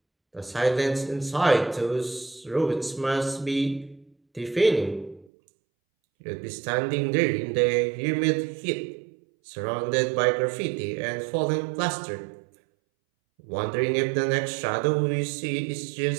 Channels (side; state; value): left; drops out; at 5.3 s